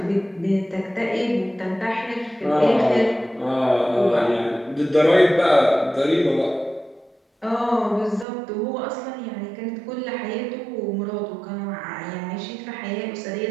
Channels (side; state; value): left; drops out; at 8.2 s